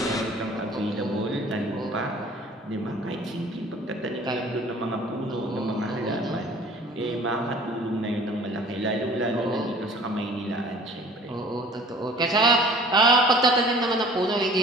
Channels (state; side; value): normal; both; correlation 0.48